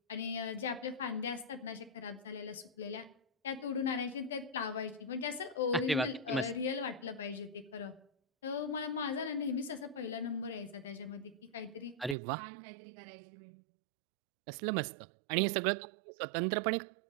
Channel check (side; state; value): left; drops out; at 12.2 s